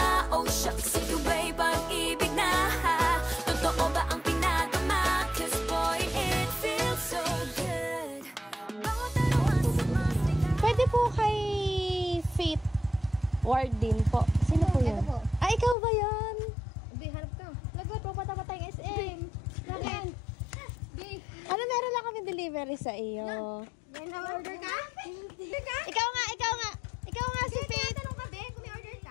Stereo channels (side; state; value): right; drops out; at 15.8 s